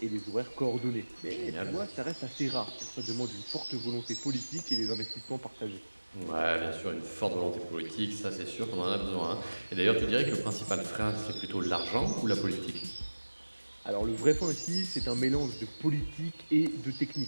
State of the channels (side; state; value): both; inverted; correlation -1.00